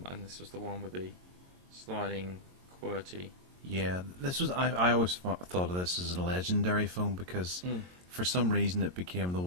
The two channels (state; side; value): late; left; 22 ms